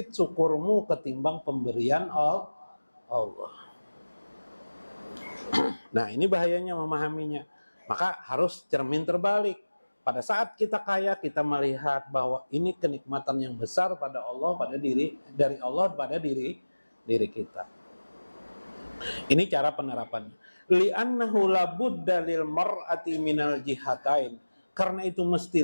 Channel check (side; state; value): both; inverted; correlation -1.00